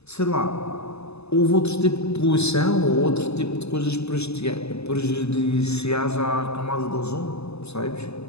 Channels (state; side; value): late; right; 0.79 ms